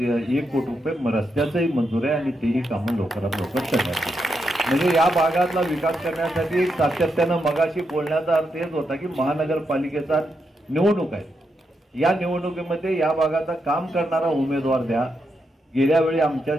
कोटी रुपये रस्त्याचंही मंजूर आहे आणि तेही कामं लवकरात लवकर करण्यात येईल। म्हणजे या भागातला विकास करण्यासाठी सातत्यानं मगाशी बोलण्याचा अर्थ हेच होता की महानगरपालिकेचा निवडणूक आहे, या निवडणुकीमध्ये या भागाचा काम करणारा उमेदवार द्या। गेल्या वेळी आमच्या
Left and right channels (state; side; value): normal; both; correlation 0.83